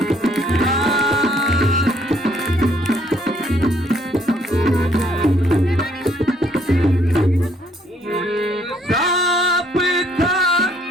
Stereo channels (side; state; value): both; normal; correlation 0.66